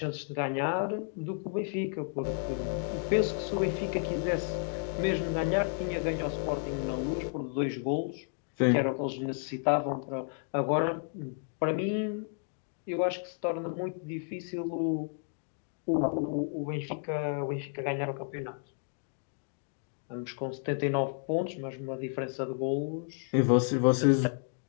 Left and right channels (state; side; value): silent; right; 56 dB below the other